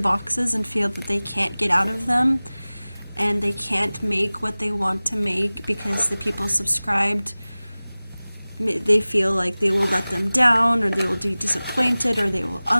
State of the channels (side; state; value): both; inverted; correlation -0.99